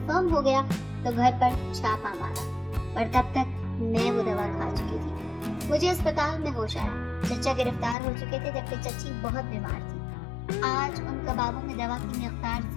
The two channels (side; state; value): right; drops out; at 8.0 s